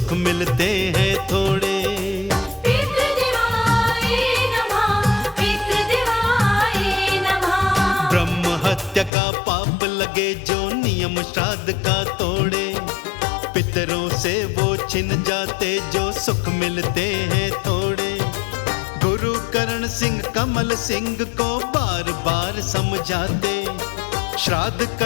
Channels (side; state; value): right; drops out; at 9.1 s